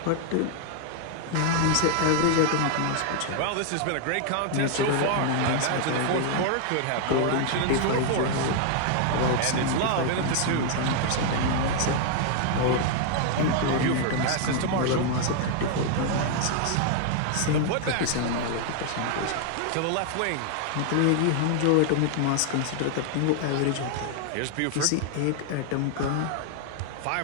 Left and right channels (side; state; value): both; different; correlation 0.00